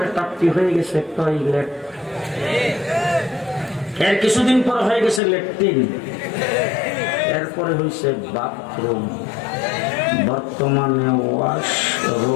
তাপ্তি হয়ে গেছে টয়লেট, এর কিছুদিন পরে হয়ে গেছে ল্যাট্রিন, এরপরে হয়েছে বাথরুম, বর্তমানে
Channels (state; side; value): drops out; right; at 5.2 s